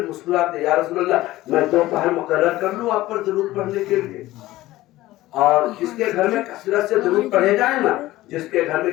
مسکراتے یا رسول اللہ میں دوپہر مقرر کر لوں آپ پر درود پڑھنے کے لیے اور جس کے گھر میں کثرت سے درود پڑھے جائیں نا جس کے گھر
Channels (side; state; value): right; quieter; 16.8 dB